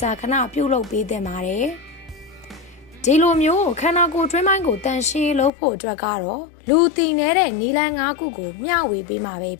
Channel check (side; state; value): right; drops out; at 5.5 s